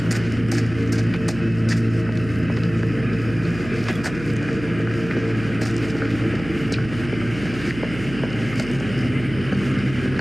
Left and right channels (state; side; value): noise; right; hum, 12 dB below the sound